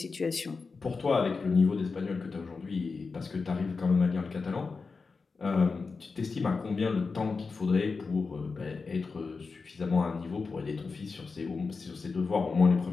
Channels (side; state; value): right; quieter; 4.5 dB